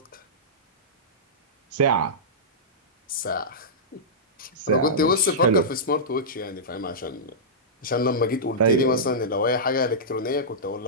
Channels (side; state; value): both; normal; correlation -0.14